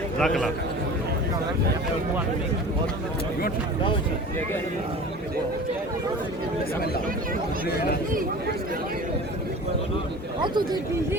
Zakala. Auto de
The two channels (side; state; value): both; normal; correlation 0.38